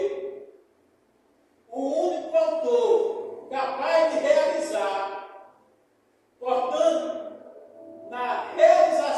o único autor capaz de realizar. Portanto, na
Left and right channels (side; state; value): both; identical; correlation 1.00